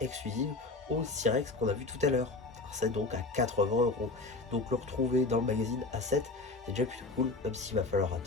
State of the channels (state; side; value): quieter; right; 3.4 dB